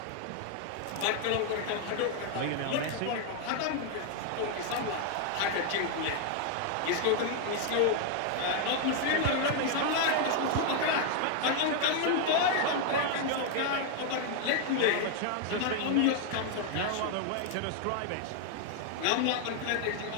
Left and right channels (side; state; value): both; different; correlation 0.00